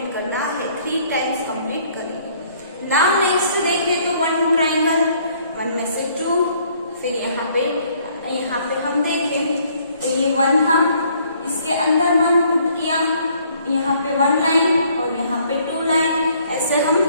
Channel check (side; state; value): both; inverted; correlation -0.63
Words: करना है, 3 टाइम्स कंप्लीट करेंगे। नाउ नेक्स्ट देखें तो 1 ट्राइंगल, 1 में से 2, फिर यहाँ पे हम देखें तो ये 1 था, इसके अंदर 1 पुट किया, यहाँ पे 1 लाइन और यहाँ पे 2 लाइन। ऐसे हम